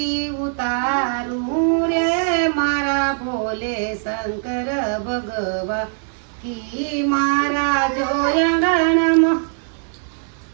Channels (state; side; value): silent; left; 65 dB below the other